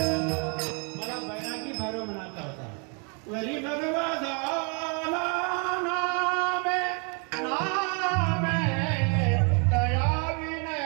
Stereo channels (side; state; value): left; quieter; 36.5 dB